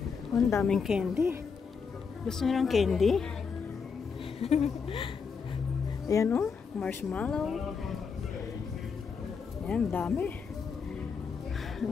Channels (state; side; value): quieter; right; 5.7 dB